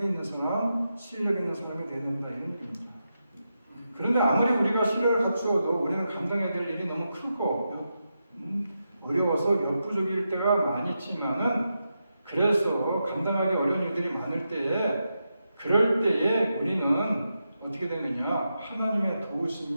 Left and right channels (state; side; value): inverted; both; correlation -0.87